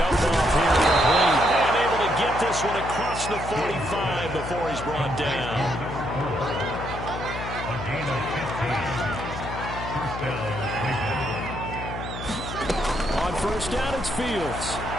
off here complete. And able to get this one across the 45 before he's brought down. A gain of 15. On 1st down, it's Fields.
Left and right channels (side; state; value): left; noise; hum, 8 dB below the sound